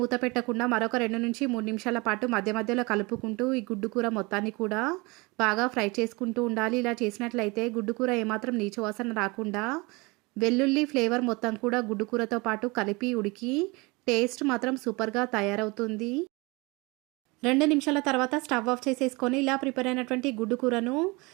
మూత పెట్టకుండా మరొక 2 నుంచి 3 నిమిషాల పాటు మధ్య మధ్యలో కలుపుకుంటూ ఈ గుడ్డు కూర మొత్తాన్ని కూడా బాగా ఫ్రై చేసుకుంటూ ఉండాలి. ఇలా చేసినట్లయితే గుడ్డు కూర ఏమాత్రం నీచు వాసన రాకుండా వెల్లుల్లి ఫ్లేవర్ మొత్తం కూడా గుడ్డు కూరతో పాటు కలిపి ఉడికి టేస్ట్ మాత్రం సూపర్గా తయారవుతుంది. 2 నిమిషాల తర్వాత స్టవ్ ఆఫ్ చేసేసుకొని ఇలా ప్రిపేర్ అయినటువంటి గుడ్డు కూరను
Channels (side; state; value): left; quieter; 25.7 dB